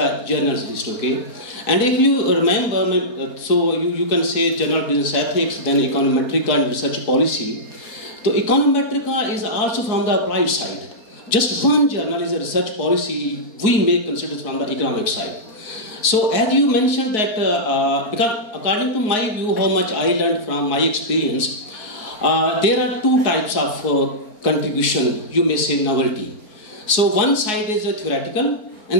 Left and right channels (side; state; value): right; late; 4.7 ms